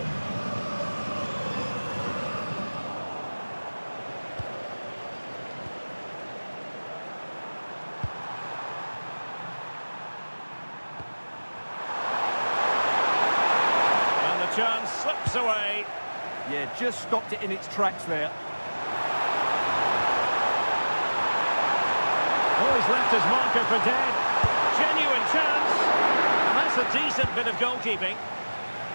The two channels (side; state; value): both; inverted; correlation -1.00